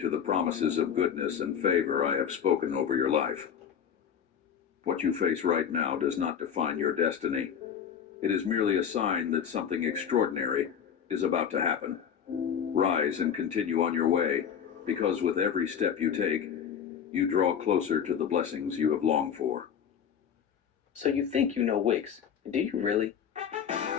the promises of goodness and favor I have spoken over your life. What you face right now does not define your destiny. It is merely a sign that something extraordinary is about to happen. Rise and continue on your way, because with every step you take, you draw closer to the blessings you have longed for. So you think you know Wix? Do you really?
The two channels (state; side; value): quieter; right; 8.1 dB